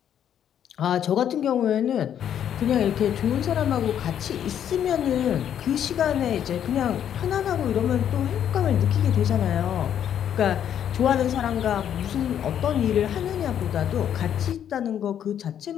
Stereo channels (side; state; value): right; quieter; 9.6 dB